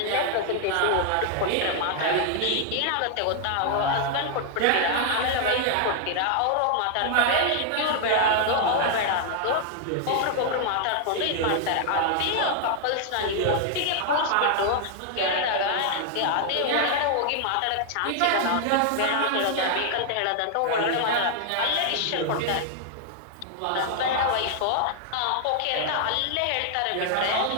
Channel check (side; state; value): both; different; correlation 0.00